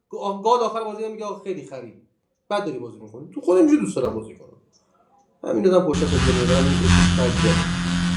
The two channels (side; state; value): both; identical; correlation 1.00